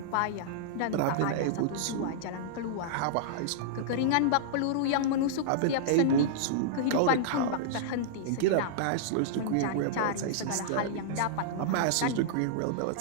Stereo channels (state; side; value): different; both; correlation -0.02